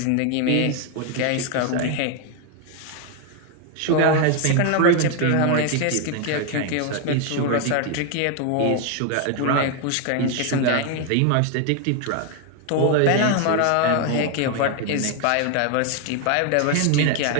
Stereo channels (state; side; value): different; both; correlation 0.01